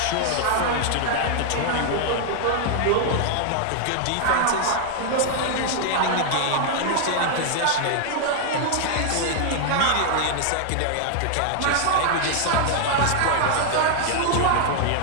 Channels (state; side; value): different; both; correlation 0.00